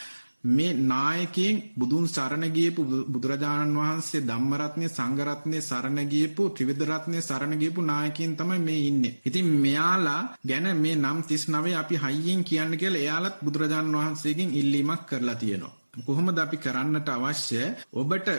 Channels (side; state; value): both; inverted; correlation -1.00